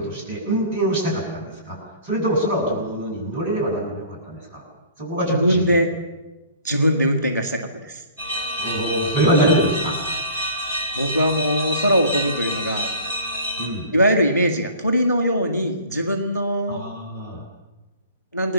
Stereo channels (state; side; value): inverted; both; correlation -0.47